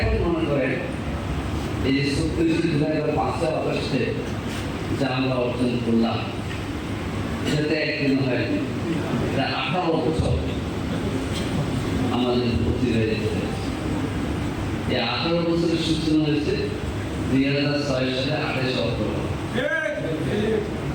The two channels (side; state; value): both; identical; correlation 1.00